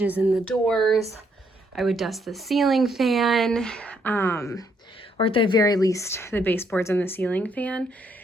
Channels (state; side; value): normal; both; correlation 0.72